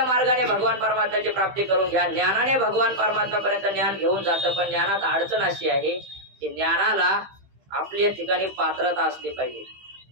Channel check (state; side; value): late; left; 15 ms